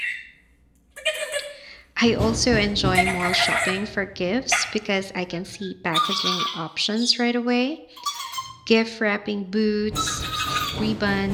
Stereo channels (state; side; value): identical; both; correlation 1.00